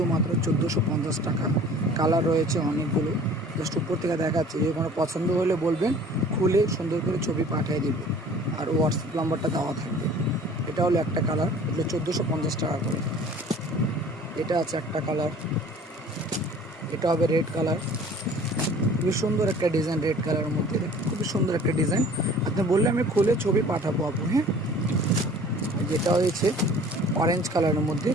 1450 টাকা। কালার রয়েছে অনেকগুলো, জাস্ট উপর থেকে দেখাচ্ছি। যদি কোনো পছন্দ হলে বলবেন, খুলে সুন্দর করে ছবি পাঠিয়ে দিব, আর হোয়াটসঅ্যাপ নাম্বারটা দেওয়া থাকবে। এটা হলো একটা কালার, এগুলো 1450 টাকা করে। এটা আছে একটা কালার, এটা হবে রেড কালার। খুবই সুন্দর একটা ডিজাইন, রেড কালারের মধ্যে খুবই সুন্দর একটা ডিজাইন। আপনি বললে আমি খুলে ছবি পাঠাবো আপু। হ্যাঁ, যেটা হয়েছে অরেঞ্জ কালারের মধ্যে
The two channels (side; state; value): both; normal; correlation 0.48